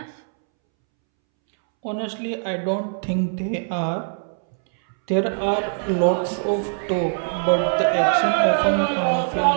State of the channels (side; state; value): left; silent; 64 dB below the other